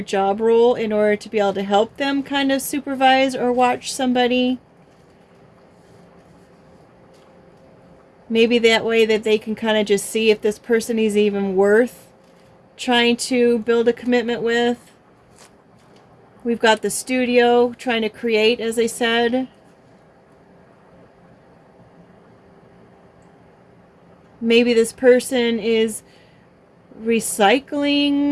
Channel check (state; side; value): identical; both; correlation 1.00